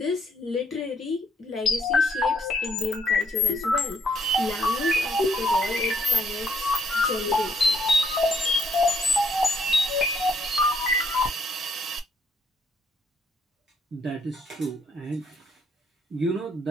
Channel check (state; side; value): normal; both; correlation 0.69